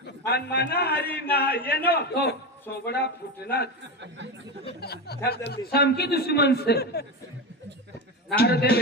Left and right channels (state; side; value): normal; both; correlation 0.18